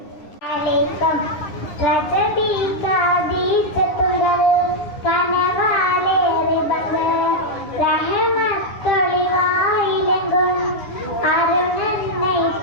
അലൈക്കും. രജബി കാദീസത്തുകൾ കനവാലേറി ബദർ, റഹമത്തൊളിവായിലെങ്കും അരുണന്നൈ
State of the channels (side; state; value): right; late; 9.7 ms